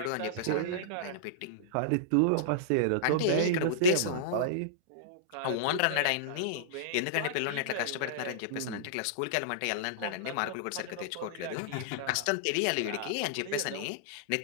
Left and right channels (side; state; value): both; different; correlation -0.02